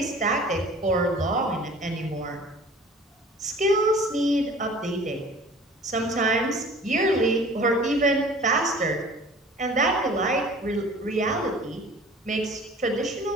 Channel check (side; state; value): both; normal; correlation 0.46